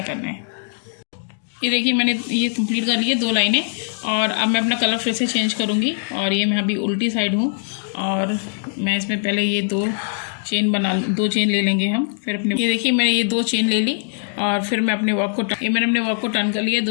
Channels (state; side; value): silent; right; digital silence